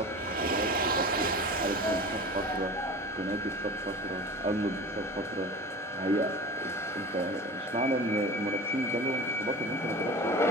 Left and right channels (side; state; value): both; normal; correlation 0.35